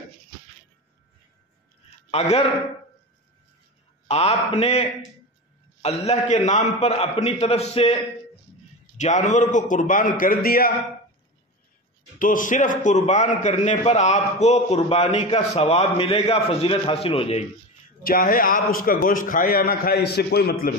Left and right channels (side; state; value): both; normal; correlation 0.25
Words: اگر آپ نے اللہ کے نام پر اپنی طرف سے جانور کو قربان کر دیا تو صرف قربان کرنے پر آپ کو قربانی کا ثواب ملے گا، فضیلت حاصل ہو جائے گی، چاہے آپ اس کا گوشت کھائیں یا نہ کھائیں، اس سے کوئی مطلب